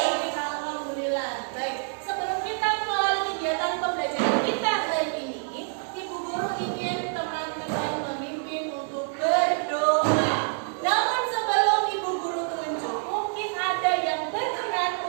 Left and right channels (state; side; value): silent; left; 60 dB below the other